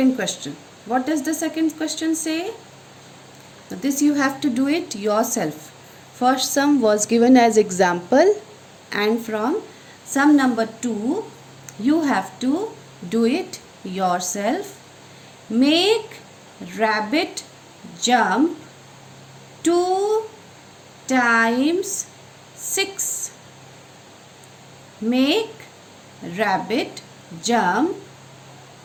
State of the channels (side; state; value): both; identical; correlation 1.00